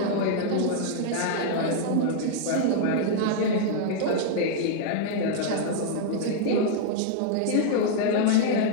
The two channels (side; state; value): both; different; correlation 0.00